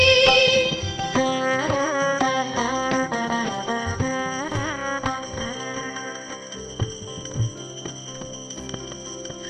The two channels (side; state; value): both; identical; correlation 1.00